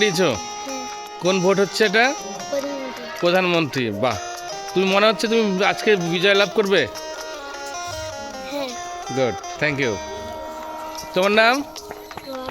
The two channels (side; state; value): both; identical; correlation 1.00